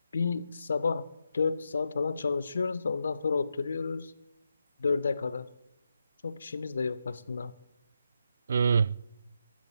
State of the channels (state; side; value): inverted; both; correlation -0.85